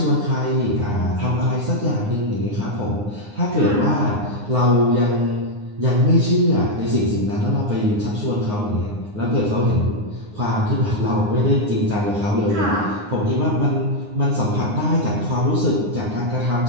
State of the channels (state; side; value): late; left; 9.7 ms